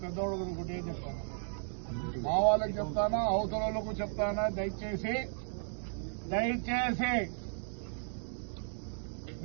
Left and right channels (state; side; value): silent; left; digital silence